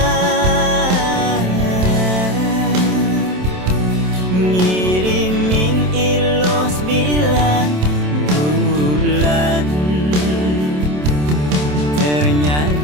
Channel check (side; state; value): left; late; 27 ms